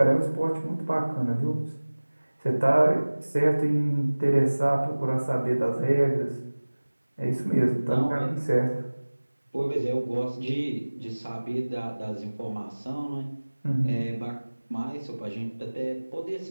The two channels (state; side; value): inverted; both; correlation -1.00